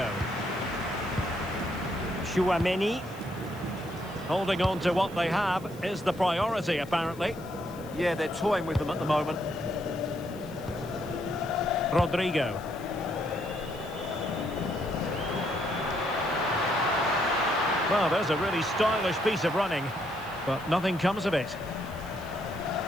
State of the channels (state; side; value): noise; left; hiss, 23 dB below the sound